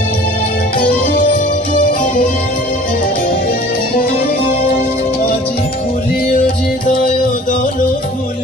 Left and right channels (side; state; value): both; normal; correlation 0.47